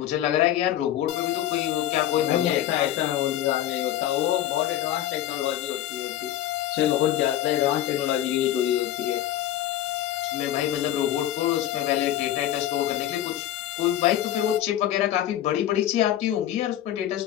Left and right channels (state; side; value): quieter; right; 12.4 dB